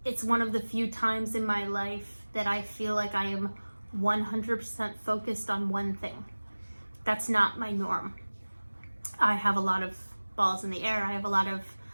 it's one of the few times in my life that I feel like I am 100% focused on one thing. That's not my norm. I have a lot of balls in the air. I have a lot of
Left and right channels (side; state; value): both; inverted; correlation -1.00